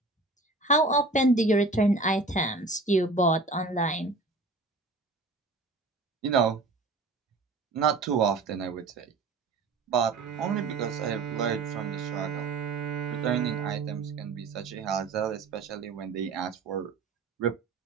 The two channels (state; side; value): quieter; left; 3.4 dB